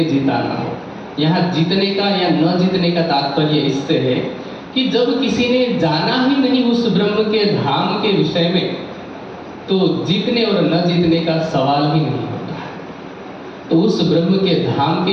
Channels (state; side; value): identical; both; correlation 1.00